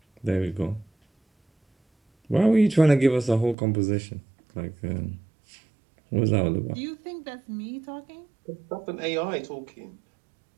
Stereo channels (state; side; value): drops out; left; at 3.6 s